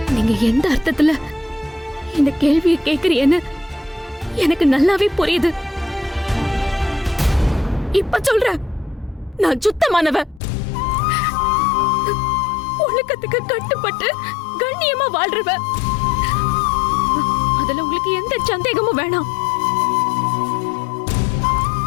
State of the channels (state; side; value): drops out; right; at 10.4 s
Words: நீங்க எந்த அர்த்தத்துல இந்த கேள்வியை கேக்குறீன்னு எனக்கு நல்லாவே புரியுது. இப்ப சொல்ற, நான் சுத்தமானவ, ஒழுக்கத்துக்கு கட்டுப்பட்டு கண்ணியமா வாழ்றவ. அதுல உங்களுக்கு எந்த சந்தேகமும் வேணாம்.